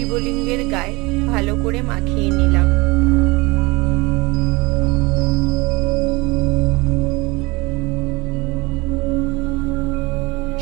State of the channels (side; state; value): left; quieter; 24.0 dB